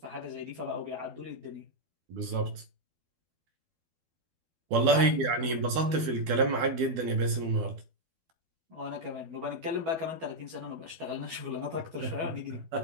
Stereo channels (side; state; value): left; late; 12 ms